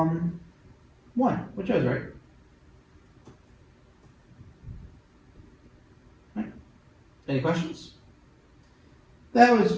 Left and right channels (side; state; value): both; identical; correlation 1.00